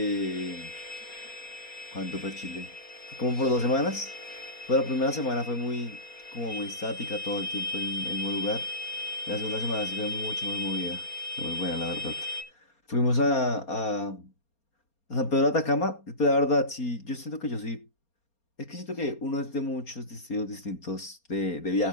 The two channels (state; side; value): late; right; 4.3 ms